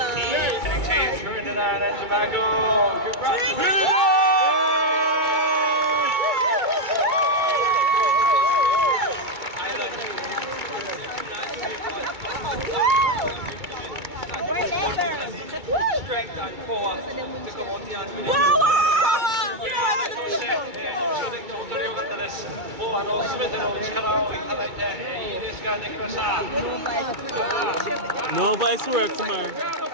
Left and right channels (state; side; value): late; left; 2.3 ms